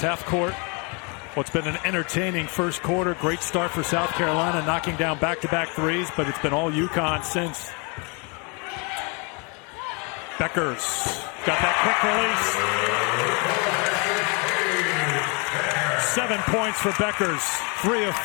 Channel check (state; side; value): quieter; right; 32.9 dB